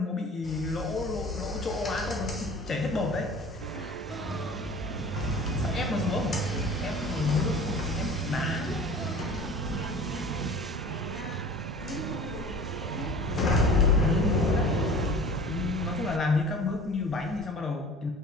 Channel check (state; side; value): normal; both; correlation 0.43